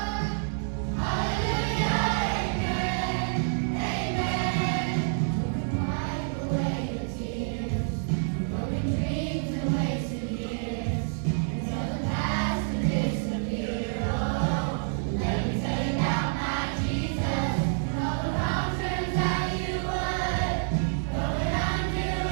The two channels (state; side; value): silent; left; digital silence